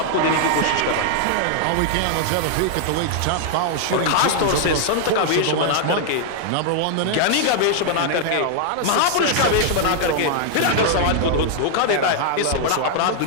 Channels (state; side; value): different; both; correlation 0.00